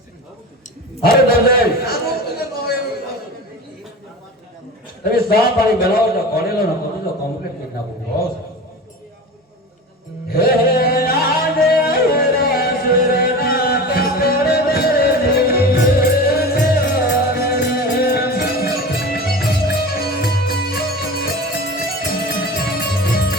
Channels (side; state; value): both; normal; correlation 0.32